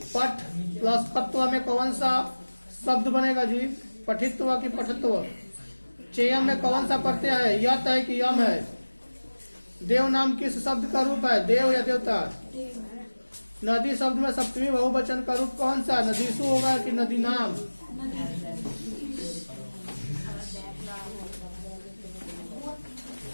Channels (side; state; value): both; inverted; correlation -1.00